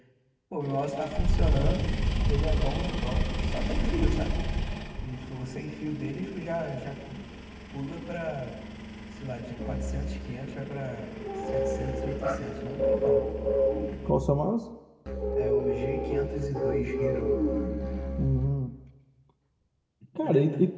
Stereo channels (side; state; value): both; identical; correlation 1.00